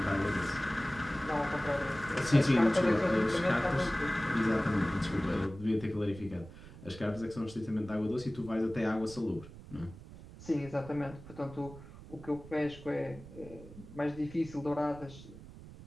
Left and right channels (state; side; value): noise; right; rumble, 16 dB below the sound